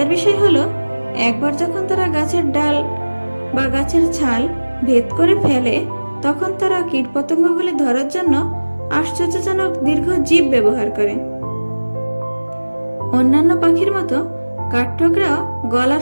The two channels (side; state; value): both; inverted; correlation -1.00